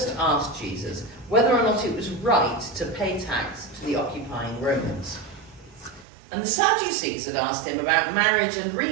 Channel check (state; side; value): drops out; left; at 6.1 s